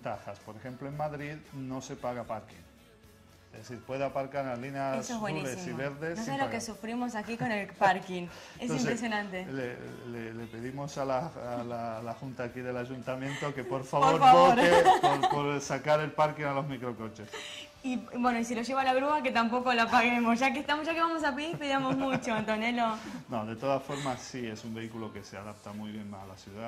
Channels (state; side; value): identical; both; correlation 1.00